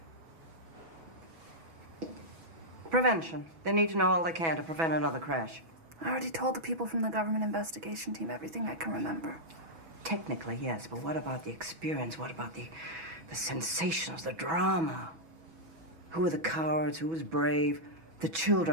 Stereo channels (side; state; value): left; late; 6.1 ms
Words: Prevention. They need to know all they can to prevent another crash. I already told the people from the government investigation team everything I can remember. Technically, yes, but what about the experience? What about the sensations, the drama? Who were the cowards? Who was brave? The